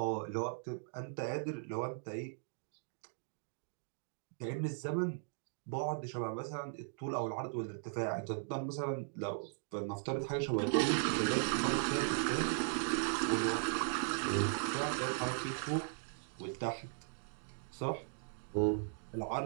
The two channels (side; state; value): left; silent; digital silence